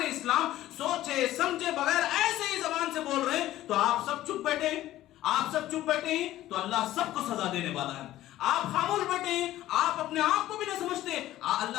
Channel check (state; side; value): quieter; right; 14.5 dB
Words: اسلام سوچے سمجھے بغیر ایسے ہی زبان سے بول رہے ہیں. تو آپ سب چپ بیٹھے ہیں تو اللہ سب کو سزا دینے والا ہے. آپ خاموش بیٹھے ہیں، آپ اپنے آپ کو بھی نہیں سمجھتے.